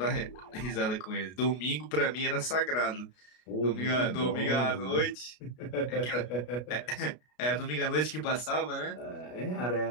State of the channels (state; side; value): late; right; 33 ms